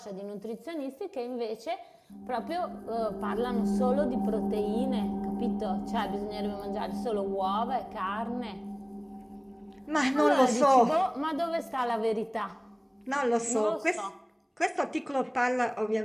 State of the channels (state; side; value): identical; both; correlation 1.00